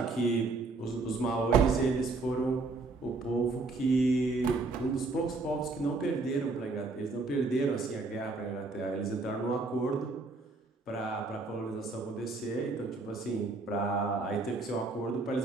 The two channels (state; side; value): quieter; left; 3.6 dB